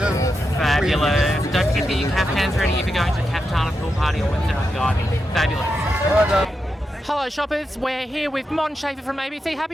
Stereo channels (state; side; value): normal; both; correlation 0.87